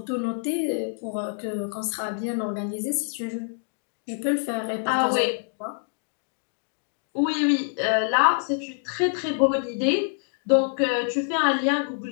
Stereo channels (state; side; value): silent; right; 61 dB below the other